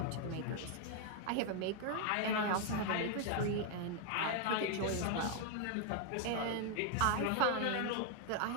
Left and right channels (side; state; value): both; different; correlation 0.00